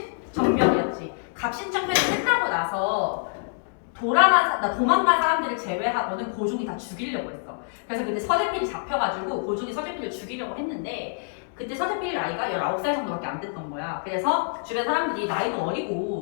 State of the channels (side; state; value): right; silent; digital silence